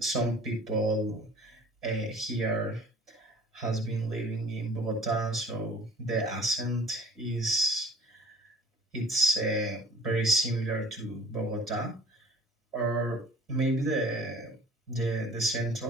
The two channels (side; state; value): both; normal; correlation 0.49